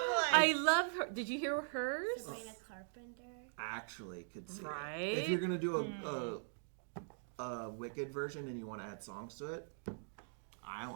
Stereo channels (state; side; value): silent; left; digital silence